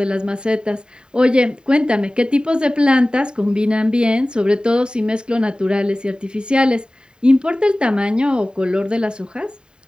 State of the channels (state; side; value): late; left; 0.049 ms